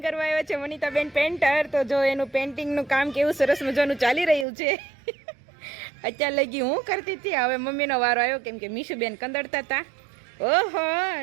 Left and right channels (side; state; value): left; drops out; at 4.5 s